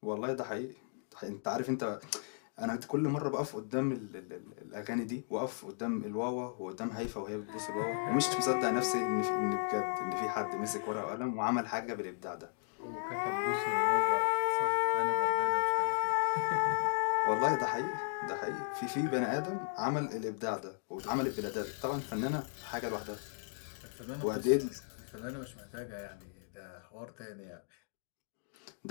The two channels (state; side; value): silent; right; digital silence